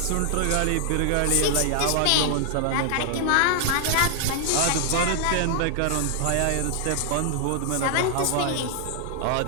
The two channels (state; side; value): different; both; correlation 0.00